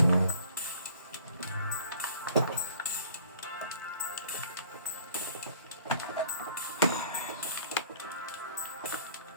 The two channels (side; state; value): both; inverted; correlation -0.52